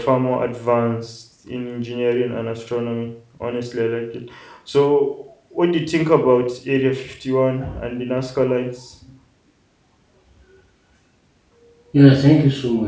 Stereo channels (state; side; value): identical; both; correlation 1.00